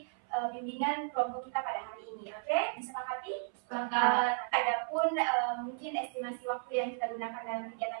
bimbingan kelompok kita pada hari ini. Oke, disepakati? Sepakat. Adapun mungkin estimasi waktu yang kita gunakan dalam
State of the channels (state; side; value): silent; left; 55 dB below the other